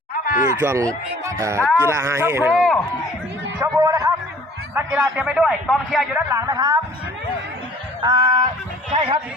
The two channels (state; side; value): normal; both; correlation 0.51